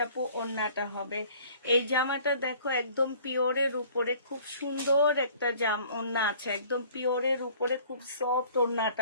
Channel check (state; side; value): inverted; both; correlation -0.52